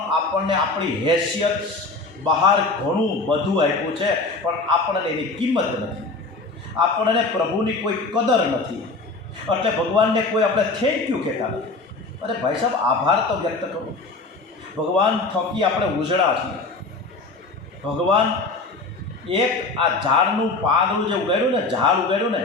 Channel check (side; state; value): right; quieter; 3.6 dB